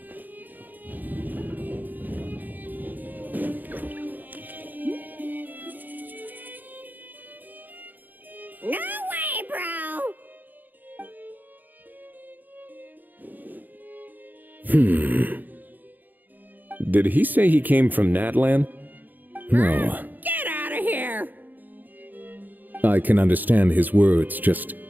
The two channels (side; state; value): left; late; 0.086 ms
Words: No way, bro! Did he say he came from Natlan? No, Get out of here! I can understand his words, just